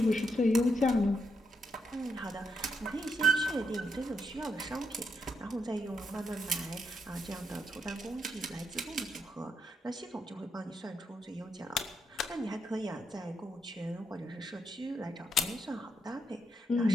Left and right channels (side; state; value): both; normal; correlation 0.80